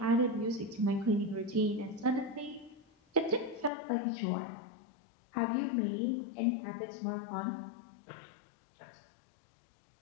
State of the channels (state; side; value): drops out; right; at 3.7 s